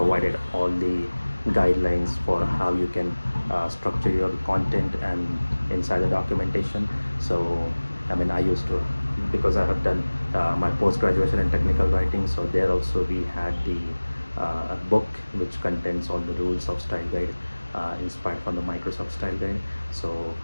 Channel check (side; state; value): both; inverted; correlation -1.00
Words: all the guidelines for how you can structure your content and inside the documentation. So I mean, I used to, because I have done my post-graduation in technical writing, so there also we had the book which contains all the rules of style guide, inspired from the Microsoft style guide. So